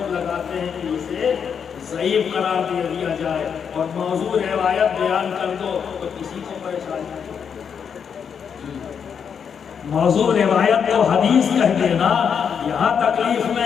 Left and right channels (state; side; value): quieter; right; 7.1 dB